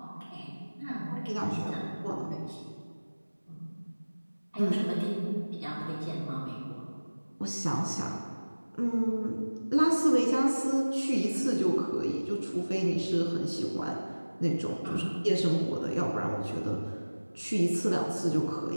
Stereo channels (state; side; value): inverted; both; correlation -1.00